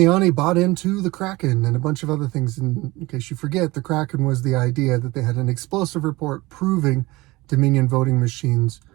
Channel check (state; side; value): quieter; left; 21.3 dB